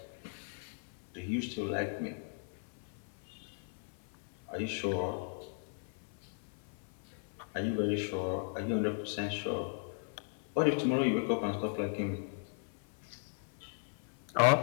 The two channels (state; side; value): silent; right; 53 dB below the other